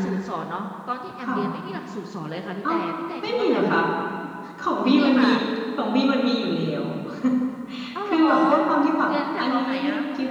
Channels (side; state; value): both; identical; correlation 1.00